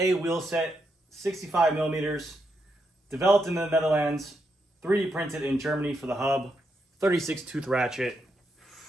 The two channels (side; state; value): both; normal; correlation 0.82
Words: wheel set, 65 millimeters, developed in the Netherlands, 3D printed in Germany for the hub, 36 tooth ratchet,